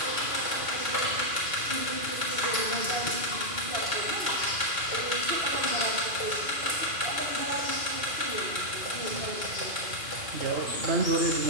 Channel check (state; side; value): late; left; 2.5 ms